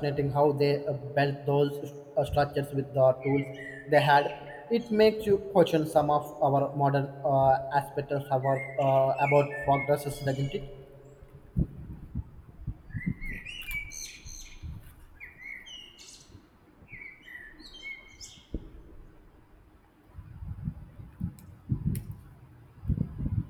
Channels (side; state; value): both; identical; correlation 1.00